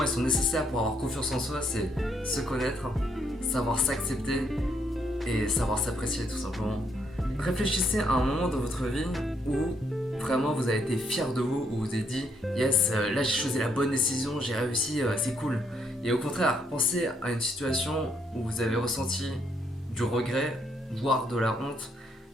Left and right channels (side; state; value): both; normal; correlation 0.73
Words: elles sont nécessaires pour avoir confiance en soi, c'est se connaître, savoir s'accepter et savoir s'apprécier tout simplement. Réfléchissez à un moment dans votre vie où vraiment vous avez été fier de vous, où vous avez dit yes, là j'ai choisi la bonne décision, j'ai réussi, c'est cool. Et au contraire, pensez à une situation où vous avez ressenti du regret, voire de la honte,